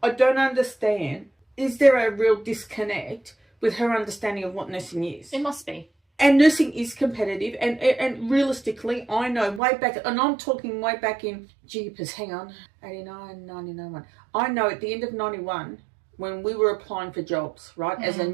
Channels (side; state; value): left; drops out; at 9.6 s